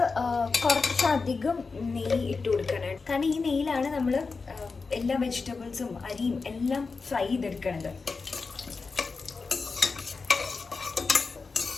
കുറച്ചധികം നെയ്യ് ഇട്ട് കൊടുക്കണം. കാരണം ഈ നെയ്യിലാണ് നമ്മൾ എല്ലാ വെജിറ്റബിൾസും അരിയും എല്ലാം ഫ്രൈ ചെയ്തെടുക്കണത്.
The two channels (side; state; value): right; quieter; 4.5 dB